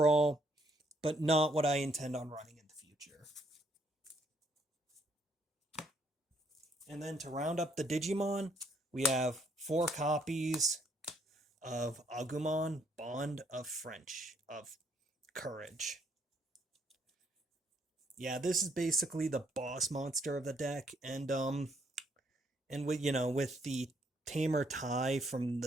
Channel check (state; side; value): normal; both; correlation 0.69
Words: but not what I intend on running in the future. And then to round up the Digimon, we have 4 copies of Agumon, Bond of Courage. Yeah, this is basically the boss monster of the deck, and with, you know, with the Tamer tie from